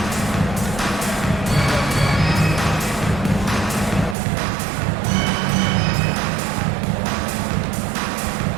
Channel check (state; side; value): drops out; left; at 4.2 s